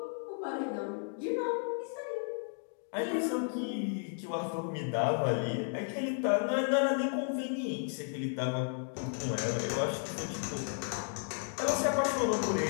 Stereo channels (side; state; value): right; silent; 55 dB below the other